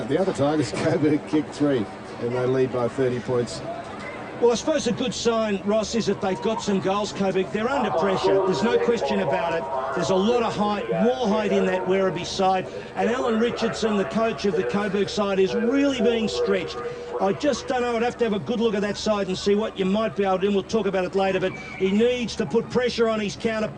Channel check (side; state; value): both; identical; correlation 1.00